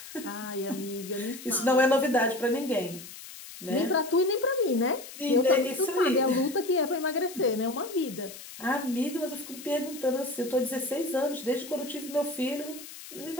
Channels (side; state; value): left; noise; hiss, 14 dB below the sound